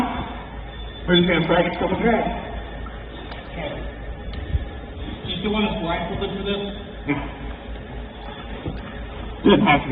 we're just going to practice a couple drags. Okay. Do you still want us blindfolded for this? Yeah. Doesn't have to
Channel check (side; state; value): both; identical; correlation 1.00